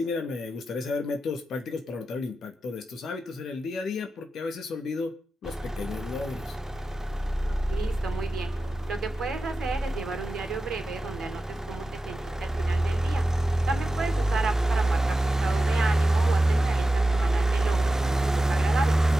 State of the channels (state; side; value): normal; both; correlation 0.93